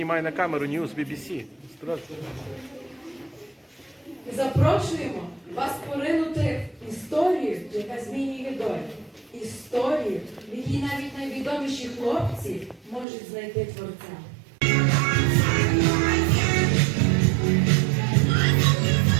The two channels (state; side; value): drops out; left; at 13.1 s